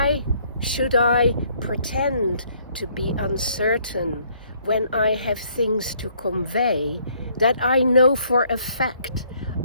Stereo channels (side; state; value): both; inverted; correlation -0.65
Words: should I pretend to be uncertain when I have things to convey that I know for a fact